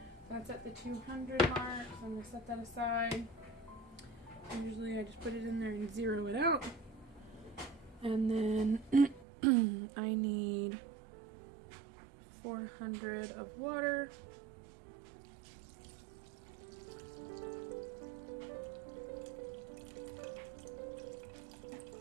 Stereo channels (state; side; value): drops out; left; at 9.2 s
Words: That's at the 200 mark, so I'm going to set that aside. Usually I just put it in there and zero it out. And then I need 400 of water.